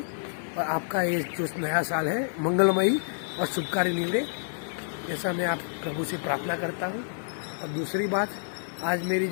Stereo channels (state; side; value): silent; right; digital silence